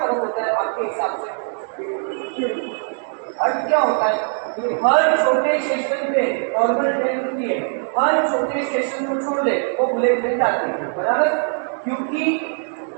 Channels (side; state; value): left; silent; 57 dB below the other